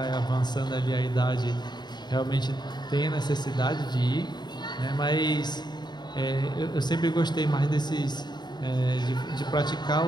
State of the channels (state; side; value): late; right; 0.21 ms